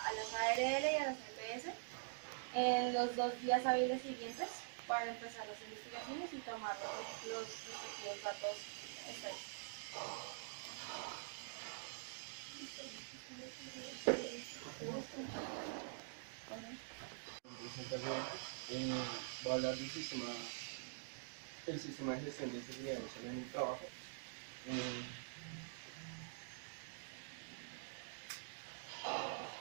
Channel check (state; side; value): silent; left; digital silence